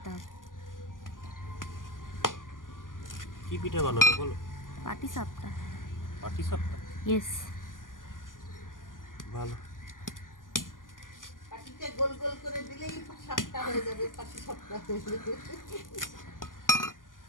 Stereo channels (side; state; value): right; late; 0.89 ms